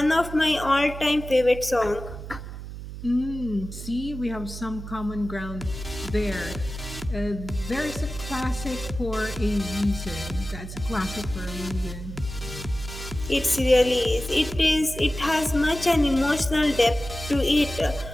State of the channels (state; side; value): noise; right; hum, 10 dB below the sound